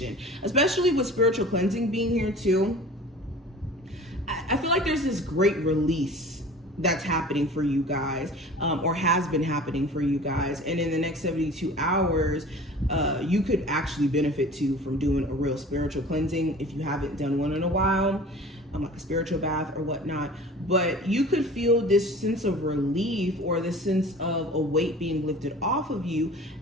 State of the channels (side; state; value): both; normal; correlation 0.42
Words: especially with spiritual cleansing being here too. I feel like there's this great release that's happening for you guys, or has been happening for you guys. And in the next 72 hours, you could actually benefit too from doing a real spiritual cleansing if you haven't done one in a while, like a spiritual bath or whatnot. But you could feel this sense of relief or this sense of a weight being lifted off of you